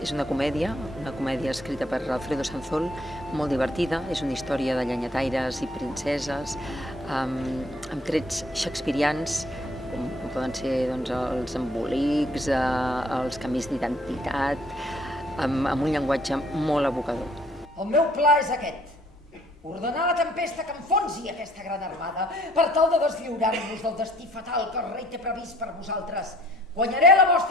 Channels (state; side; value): normal; both; correlation 0.60